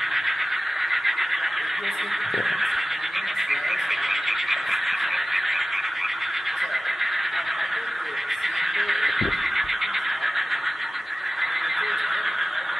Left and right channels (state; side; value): normal; both; correlation 0.96